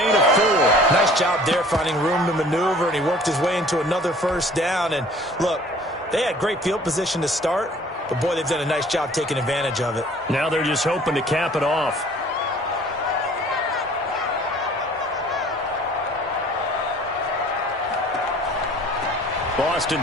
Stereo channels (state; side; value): normal; both; correlation 0.51